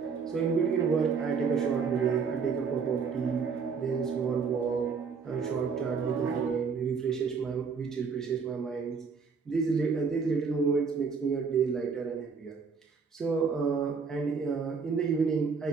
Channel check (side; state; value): left; quieter; 5.5 dB